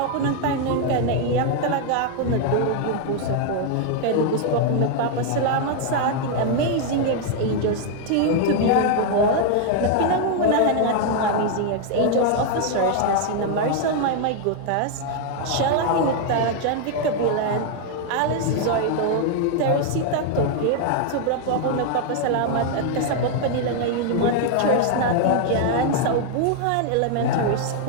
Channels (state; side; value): different; both; correlation 0.00